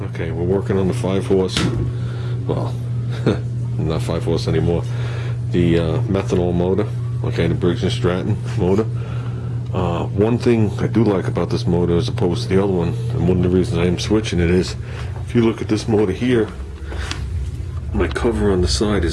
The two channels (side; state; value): both; identical; correlation 1.00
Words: Okay, we're working on the 5-horse, well, not 5-horse anymore, the methanol motor, okay, the Briggs & Stratton motor. One thing I do like about this motor as opposed to the other one, and one of the reasons I am switching it is, if you look at this motor here, my cover on the side